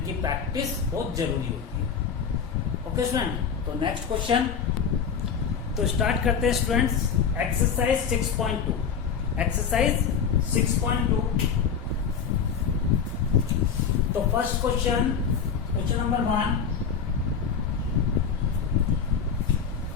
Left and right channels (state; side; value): quieter; right; 6.7 dB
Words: प्रैक्टिस बहुत जरूरी होती है। ओके स्टूडेंट, तो नेक्स्ट क्वेश्चन तो स्टार्ट करते हैं स्टूडेंट्स। Exercise 6.2, exercise 6.2। तो first question number 1,